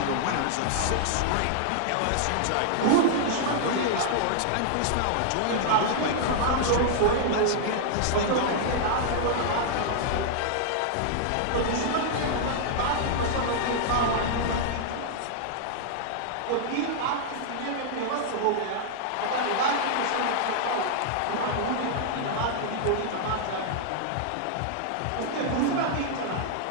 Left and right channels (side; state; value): both; different; correlation -0.01